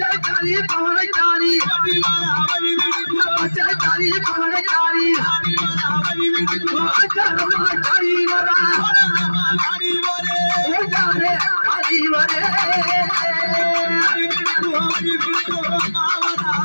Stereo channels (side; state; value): both; inverted; correlation -1.00